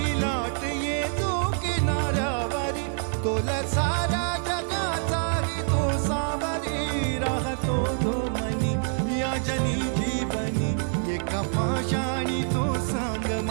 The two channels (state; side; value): silent; left; 55 dB below the other